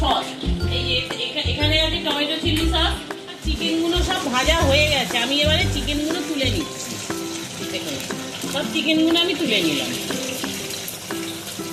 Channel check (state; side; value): identical; both; correlation 1.00